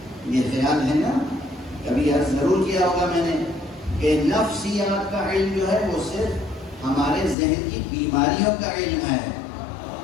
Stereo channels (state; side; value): drops out; right; at 7.4 s